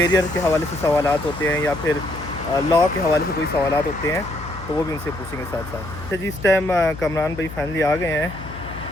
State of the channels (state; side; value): noise; left; hum, 13 dB below the sound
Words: के हवाले से सवालात होते हैं या फिर लॉ के हवाले से कोई सवालात होते हैं तो वो भी उनसे पूछेंगे साथ साथ। अच्छा जी, इस टाइम कामरान भाई फाइनली आ गए हैं